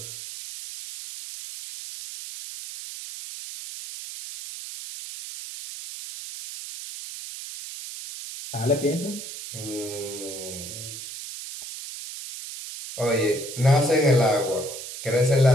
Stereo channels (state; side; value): noise; right; hiss, 10 dB below the sound